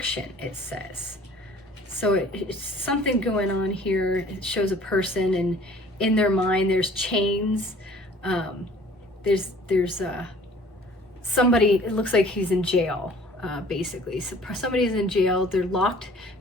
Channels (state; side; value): normal; both; correlation 0.52